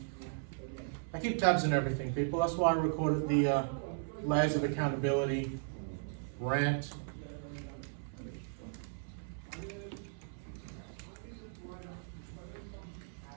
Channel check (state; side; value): silent; left; 53 dB below the other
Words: I keep tabs on everything, people. That's why I recorded the layers of accountability rant.